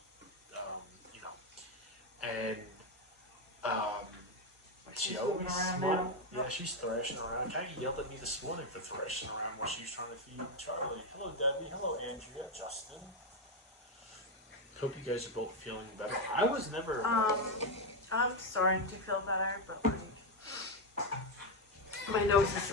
you know, and she She's always moving around smiles. now. Yeah, she's thrashing around. Kind of yelled at me this morning for thrashing around while she was trying to feed Charlie. Hello, Debbie. Hello, Andrea. Justin. Hope you guys are both feeling better. I was never. I'm starting to feel better, but like, my nose is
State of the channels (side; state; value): both; normal; correlation 0.06